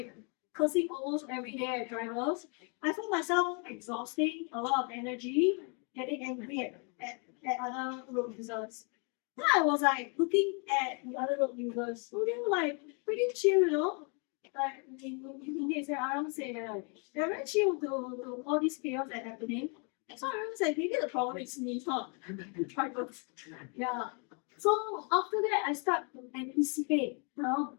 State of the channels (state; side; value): quieter; right; 36.5 dB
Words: cursing almost every day at drivers. I found myself exhausting a lot of energy, getting angry at other road users. Then I was like looking at the other road users, so they were like pretty chill, you know. Like in say Aram say like they're very chill to all these chaos that happening. So I was like, maybe the problem is me, it's not the drivers. Yeah. So after that I start to anticipate the